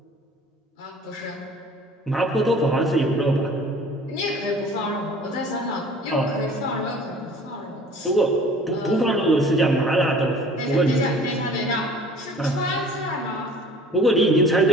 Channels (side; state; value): both; normal; correlation 0.49